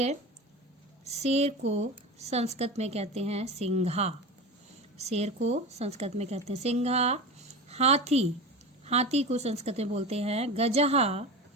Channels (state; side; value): normal; both; correlation 0.27